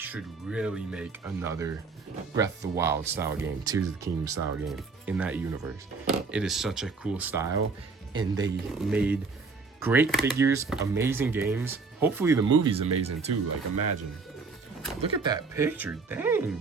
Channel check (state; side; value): quieter; left; 4.5 dB